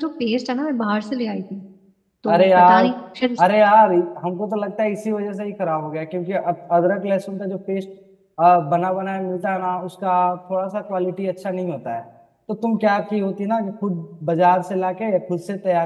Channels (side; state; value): both; identical; correlation 1.00